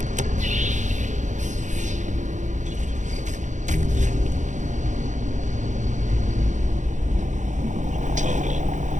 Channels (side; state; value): left; late; 0.35 ms